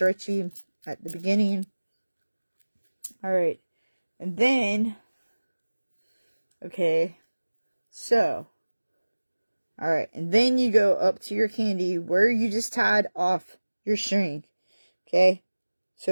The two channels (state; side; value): inverted; both; correlation -1.00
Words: at the beginning. Alright. And then, okay, so, alright, and then you go up to your kandi where you just tied off your string, okay?